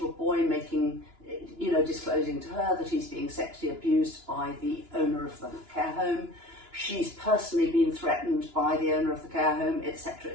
boy making, disclosing to her that he's being sexually abused by the owner of the care home. She's personally been threatened by the owner of the care home, etc.,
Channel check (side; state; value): left; late; 2.9 ms